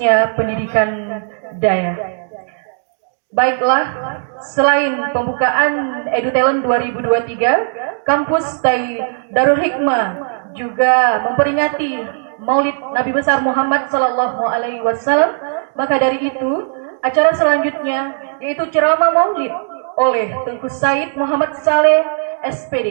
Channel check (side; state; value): left; silent; digital silence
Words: pendidikan daya. Baiklah, selain pembukaan EduTalent 2023, kampus Darul Hikmah juga memperingati Maulid Nabi besar Muhammad Sallallahu Alaihi Wasallam. Maka dari itu, acara selanjutnya yaitu ceramah Maulid oleh Tengku Said Muhammad Saleh